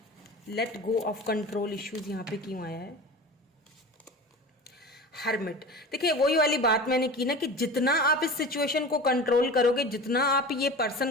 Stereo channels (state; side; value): normal; both; correlation 0.34